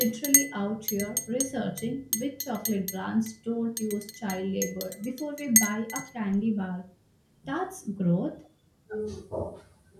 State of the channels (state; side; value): identical; both; correlation 1.00